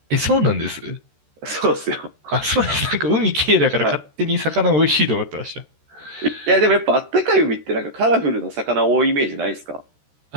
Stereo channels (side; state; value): left; late; 13 ms